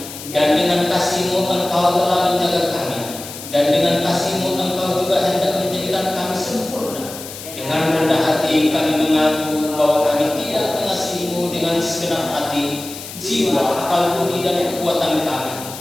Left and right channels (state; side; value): noise; left; hiss, 12 dB below the sound